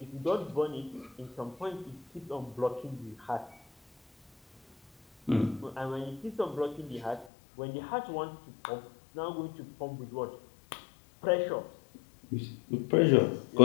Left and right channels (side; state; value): right; drops out; at 7.3 s